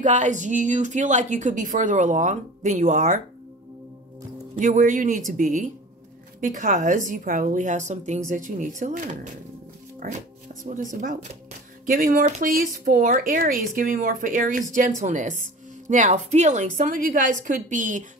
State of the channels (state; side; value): normal; both; correlation 0.40